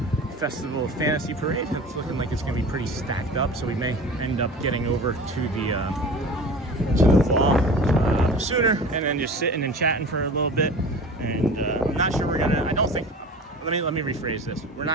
Festival of Fantasy Parade. It's looking like it's going to be pretty stacked up, so we may end up getting over to the wall sooner and then just sitting and chatting for a little bit. And I'm not sure we're gonna. I don't think. Let me rephrase this. We're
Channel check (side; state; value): both; normal; correlation 0.37